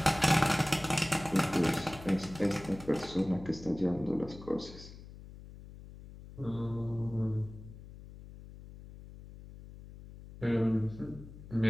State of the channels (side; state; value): left; noise; hum, 16 dB below the sound